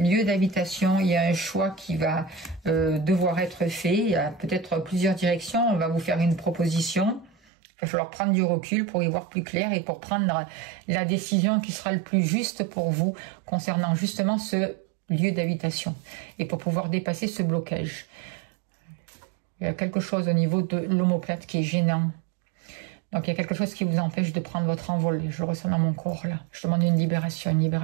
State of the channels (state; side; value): drops out; left; at 7.4 s